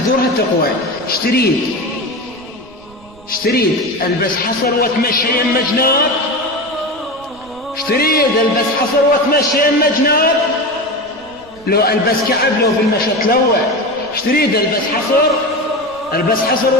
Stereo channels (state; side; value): noise; right; rumble, 26 dB below the sound